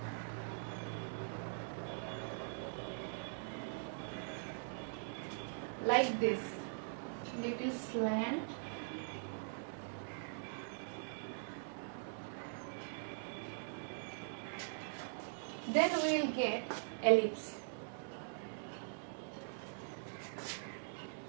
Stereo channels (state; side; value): silent; left; digital silence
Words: like this, little slant, then we will get ellipse.